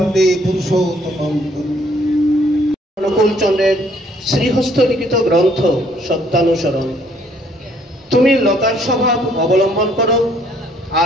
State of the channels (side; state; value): both; normal; correlation 0.64